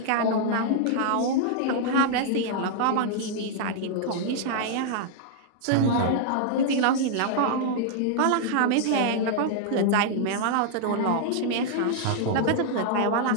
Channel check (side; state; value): both; different; correlation -0.01